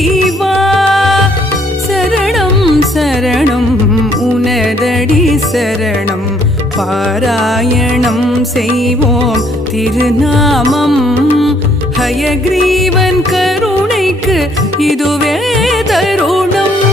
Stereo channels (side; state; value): both; normal; correlation 0.66